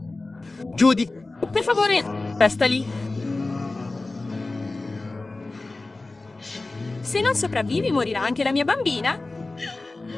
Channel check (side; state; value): right; quieter; 3.2 dB